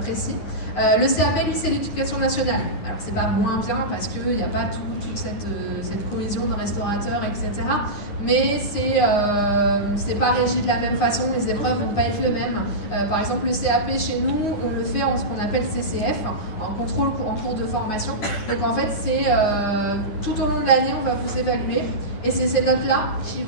précis. Le CAP, lui, c'est l'éducation nationale. Alors, c'est pas moins bien parce qu'il n'y a pas toute cette cohésion de restaurateurs, etc. Mais c'est pas régi de la même façon, les épreuves vont pas être les mêmes. Par exemple, le CAP chez nous, on le fait en ce qu'on appelle CCF, en contrôle en cours de formation. Donc en fait, c'est tout au long de l'année, on va vous évaluer. Et c'est ces notes-là qui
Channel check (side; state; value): right; late; 9.8 ms